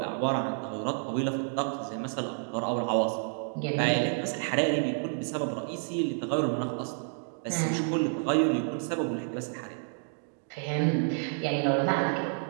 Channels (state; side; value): silent; left; 56 dB below the other